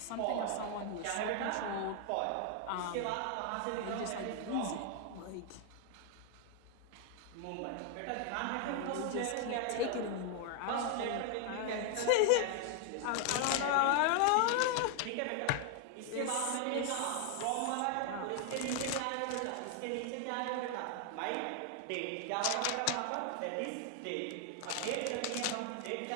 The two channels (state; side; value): different; both; correlation 0.00